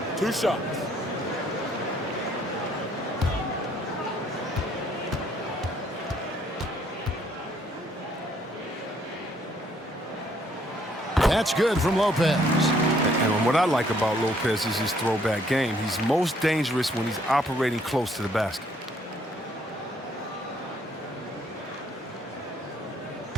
2 shots. That's good from Lopez. And what I like about Lopez is his throwback game. He's most dangerous when he's operating close to the basket.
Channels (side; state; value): both; normal; correlation 0.66